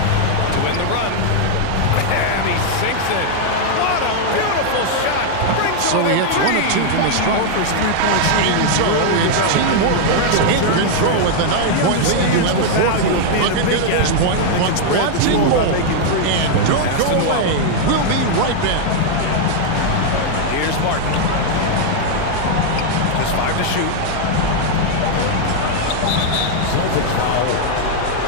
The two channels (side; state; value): both; different; correlation 0.00